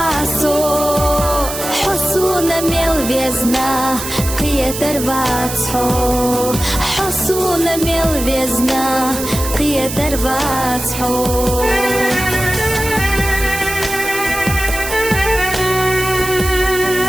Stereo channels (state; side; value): noise; right; hiss, 7 dB below the sound